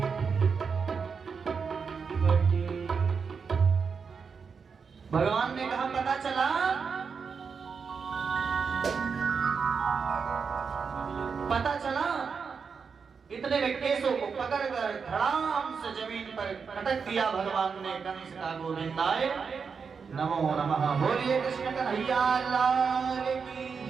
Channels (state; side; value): quieter; left; 5.7 dB